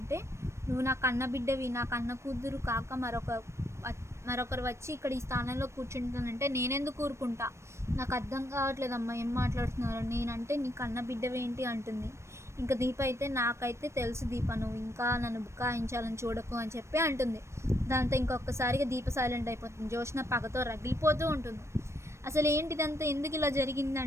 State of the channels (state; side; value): late; left; 0.13 ms